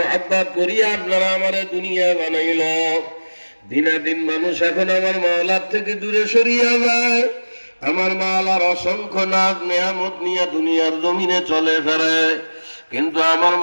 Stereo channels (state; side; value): inverted; both; correlation -1.00